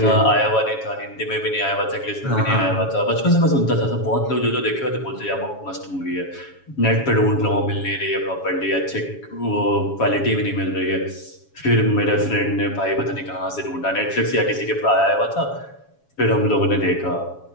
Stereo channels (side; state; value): right; late; 7.2 ms